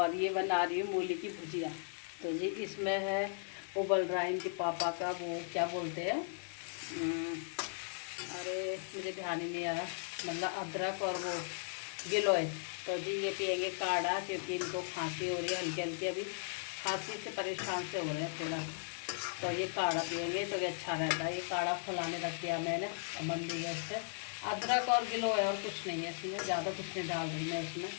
ये बना रही हूँ मूली की भुजिया। तो जी इसमें है उबल रहा है इनके पापा का वो क्या बोलते हैं, अरे मुझे ध्यान ही नहीं आ रहा, मतलब अदरक और वो गिलोय। तो जी ये पिएंगे काढ़ा क्योंकि इनको खांसी हो रही है हल्की हल्की, अभी खांसी से परेशान से हो रहे हैं थोड़ा। तो ये काढ़ा पिएंगे तो ये अच्छा रहता है। ये काढ़ा फुलाने रख दिया मैंने और बन दी गैस पे। अदरक और गिलोय और कुछ नहीं है इसमें, ज़्यादा कुछ नहीं डाल रही मैं इसमें।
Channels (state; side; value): silent; right; digital silence